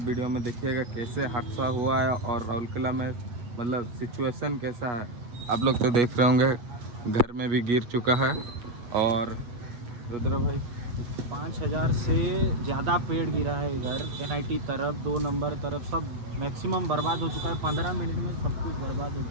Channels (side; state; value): left; late; 8.3 ms